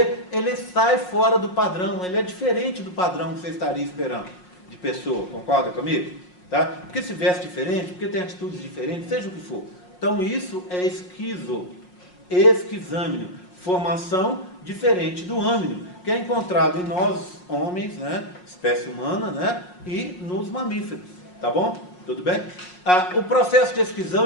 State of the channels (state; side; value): late; right; 5.5 ms